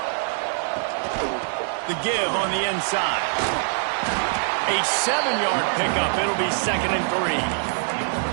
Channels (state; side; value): silent; left; digital silence